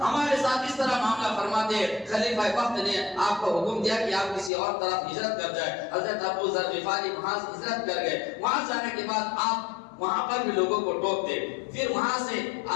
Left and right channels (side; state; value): right; drops out; at 4.5 s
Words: ہمارے ساتھ اس طرح معاملہ فرماتے، خلیفہ وقت نے آپ کو حکم دیا کہ آپ کسی اور طرف ہجرت کر جائے۔ حضرت ابو ذر غفاری وہاں سے ہجرت کر گئے، وہاں جانے کے بعد آپ وہاں پر بھی لوگوں کو ٹوکتے، پھر وہاں سے